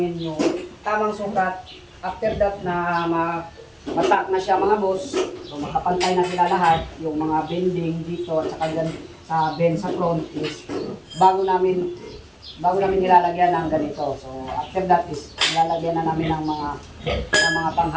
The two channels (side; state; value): both; identical; correlation 1.00